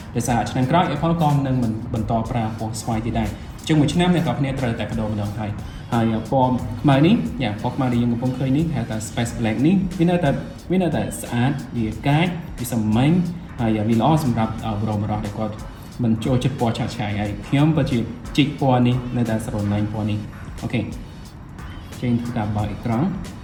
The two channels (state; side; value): identical; both; correlation 1.00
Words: ដោយសារឆ្នាំក្រោយ Apple ក៏នឹងមិនបន្តប្រើពណ៌ស្វាយទៀតដែរជាងមួយឆ្នាំអ្នកនរគ្នាត្រូវតែបដូរម្ដងហើយពណ៌ខ្មៅនេះពណ៌ខ្មៅដែលយើងកំពុងឃើញនេះហៅថា Space Black នេះវានៅតែស្អាតវាកាចវាសាមញ្ញហើយវាល្អសម្រាប់បរិបទដែលគាត់មិនចូលចិត្តពណ៌ឆាកឆាយហើយខ្ញុំពិតជាជីកពណ៌នេះនៅតែស្រឡាញ់ពណ៌នេះអូខេចេញធ្វើការបើកអេក្រង់